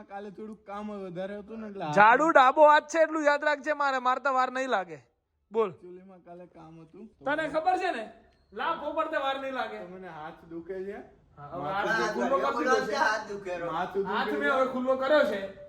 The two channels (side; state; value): both; identical; correlation 1.00